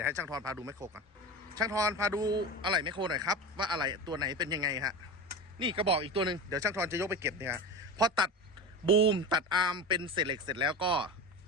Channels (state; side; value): normal; both; correlation 0.26